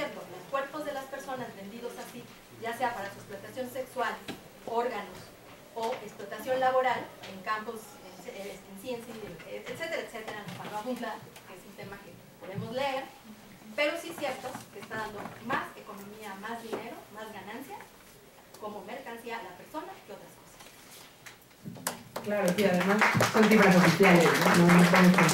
Los cuerpos de las personas vendidos así, ya sea para su explotación sexual, órganos o explotación laboral en campos, en ciencia, etcétera, etcétera, no para abundar, que es un tema que podemos leer, pero sí es cierto que está dando más economía, más dinero, más ganancias como mercancía a la persona que otras cosas. Claro, sí, además son cifras oficiales, no estamos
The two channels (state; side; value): identical; both; correlation 1.00